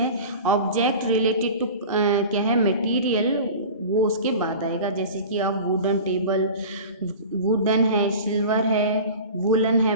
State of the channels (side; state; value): both; inverted; correlation -0.36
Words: ऑब्जेक्ट रिलेटेड टू क्या है मटेरियल, वो उसके बाद आएगा। जैसे कि आप वुडन टेबल, वुडन है, सिल्वर है, वुलन है,